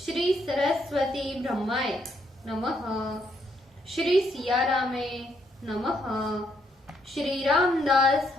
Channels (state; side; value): normal; both; correlation 0.74